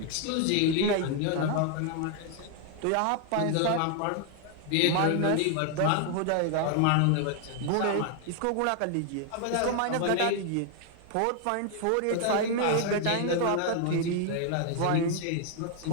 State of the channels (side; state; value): both; different; correlation 0.00